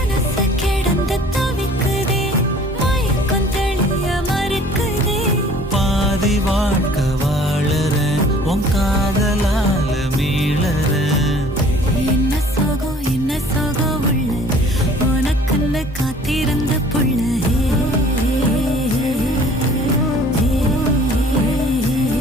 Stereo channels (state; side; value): normal; both; correlation 0.52